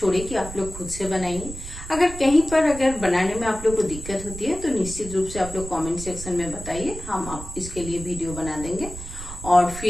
कि आप लोग खुद से बनाइए। अगर कहीं पर अगर बनाने में आप लोग को दिक्कत होती है तो निश्चित रूप से आप लोग कमेंट सेक्शन में बताइए, हम आप इसके लिए वीडियो बना देंगे। और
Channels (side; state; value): right; noise; rumble, 11 dB below the sound